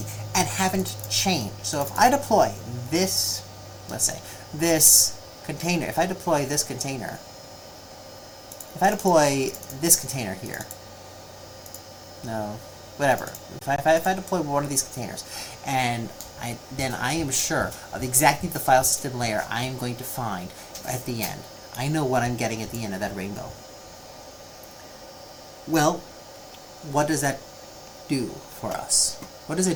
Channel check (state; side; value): identical; both; correlation 1.00